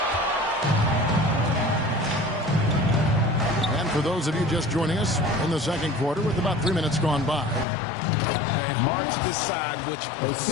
And for those of you just joining us in the second quarter with about 3 minutes gone by. And hard to decide which was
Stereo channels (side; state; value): right; drops out; at 7.7 s